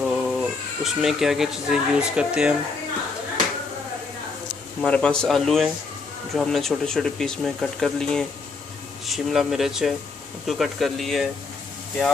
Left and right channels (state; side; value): quieter; right; 4.3 dB